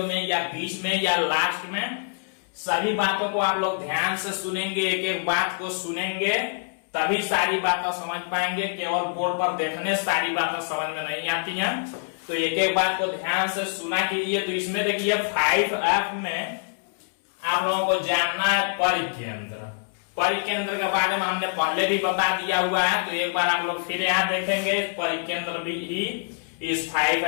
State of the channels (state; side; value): silent; right; 61 dB below the other